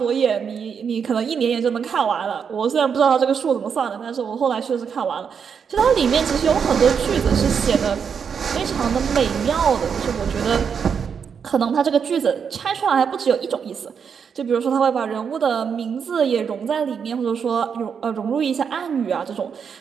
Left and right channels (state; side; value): quieter; left; 6.8 dB